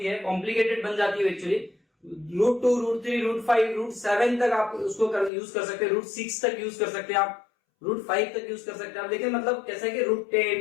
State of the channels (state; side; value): drops out; right; at 5.3 s